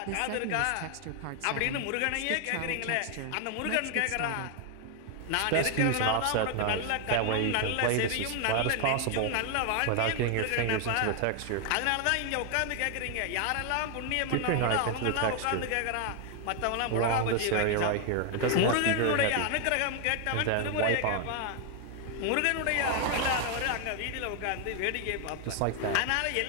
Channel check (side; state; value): both; different; correlation 0.00